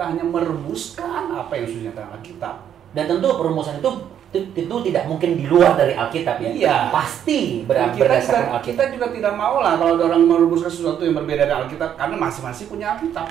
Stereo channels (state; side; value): quieter; left; 9.5 dB